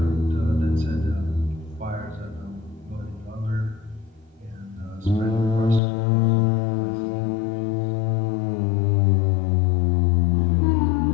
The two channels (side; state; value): right; drops out; at 5.8 s